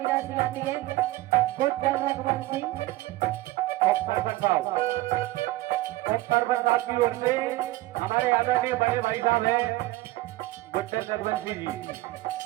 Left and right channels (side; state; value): left; quieter; 18.4 dB